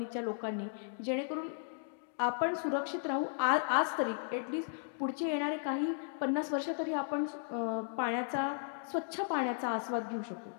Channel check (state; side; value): silent; right; digital silence